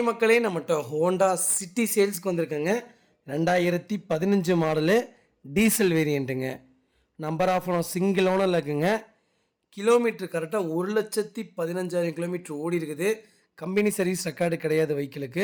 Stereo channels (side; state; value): both; identical; correlation 1.00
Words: மக்களே, நம்மகிட்ட Honda City சேல்ஸ்க்கு வந்திருக்கேங்க. 2015 மாடலு டீசல் வேரியண்ட்டுங்க. நம்பர் ஆஃப் ஓனர் சிங்கிள் ஓனரில் இருக்குங்க. கிலோமீட்டர் கரெக்டாக 1,15,000 கிலோமீட்டர் ஓடி இருக்குது. கம்பெனி சர்வீஸ் ரெக்கார்டு கிடையாது